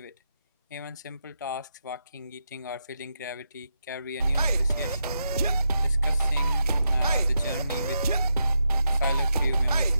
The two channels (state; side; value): inverted; both; correlation -0.84